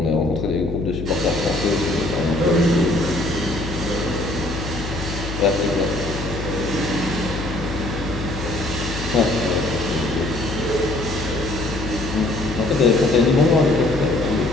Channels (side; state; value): left; noise; hum, 7 dB below the sound